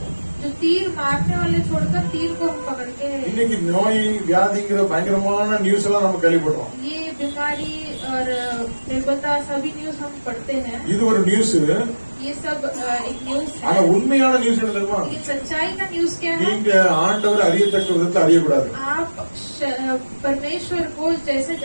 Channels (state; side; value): inverted; both; correlation -1.00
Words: जो तीर मारने वाले छोड़कर तीर को हम पकड़ के இன்னைக்கு நோய் வியாதிங்கிற பயங்கரமான நியூஸ் எல்லாம் நம்ம கேள்விப்படுறோம். ये बीमारी और निर्बलता सभी न्यूज हम पढ़ते हैं। இது ஒரு நியூஸ். ये सब एक न्यूज ஆனா है। உண்மையான நியூஸ் என்ன தெரியுமா? लेकिन सच्चाई का न्यूज क्या है? நீங்க ஆண்டவர் அறியத்தக்க விதத்தில் அறியக்கூடாது. आप परमेश्वर को जैसे